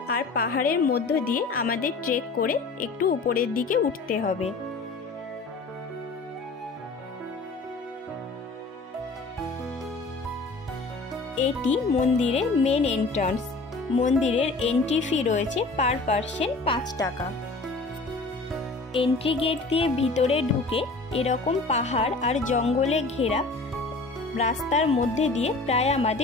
আর পাহাড়ের মধ্য দিয়ে আমাদের ট্রেক করে একটু উপরের দিকে উঠতে হবে। এটি মন্দিরের মেন এন্ট্রান্স। মন্দিরের এন্ট্রি ফি রয়েছে পার পার্সন 5 টাকা। এন্ট্রি গেট দিয়ে ভিতরে ঢুকে এরকম পাহাড় আর জঙ্গলে ঘেরা রাস্তার মধ্যে দিয়ে প্রায়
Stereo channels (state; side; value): quieter; right; 3.5 dB